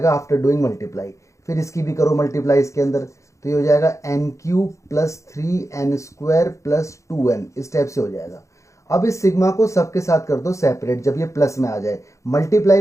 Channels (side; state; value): right; late; 0.15 ms